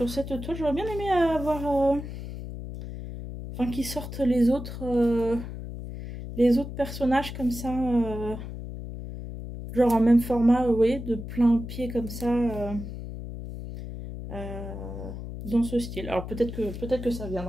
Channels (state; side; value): noise; left; hum, 9 dB below the sound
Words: J'aurais bien aimé avoir... Enfin qu'ils sortent les autres personnages comme ça. Genre en même format, vous voyez, de plein pied comme ça. Dans ce style. Alors peut-être que ça